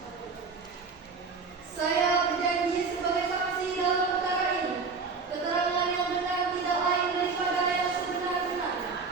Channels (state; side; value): quieter; left; 4.7 dB